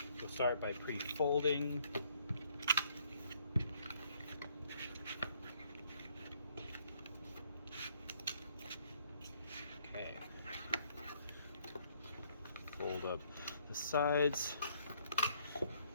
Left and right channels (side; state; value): both; inverted; correlation -0.67